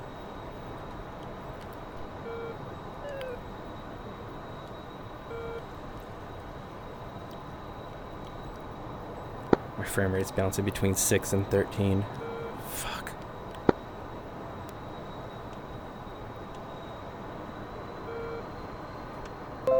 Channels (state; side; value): identical; both; correlation 1.00